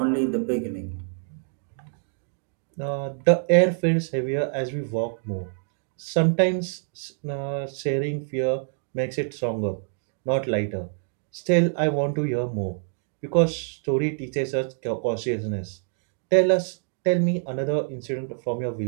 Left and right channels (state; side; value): silent; left; 61 dB below the other